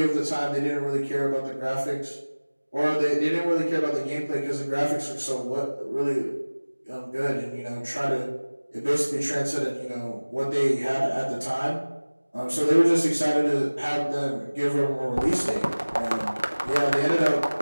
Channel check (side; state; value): both; inverted; correlation -1.00